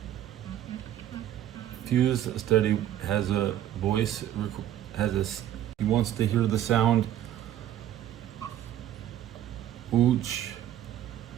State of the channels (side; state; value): left; quieter; 11.8 dB